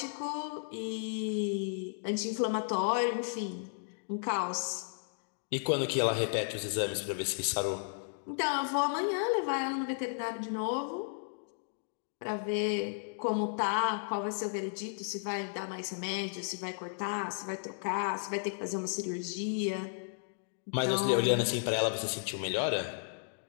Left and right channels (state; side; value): silent; right; digital silence